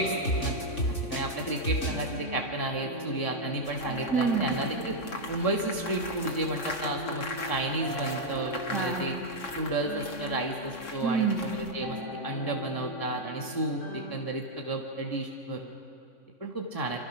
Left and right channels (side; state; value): right; late; 3.6 ms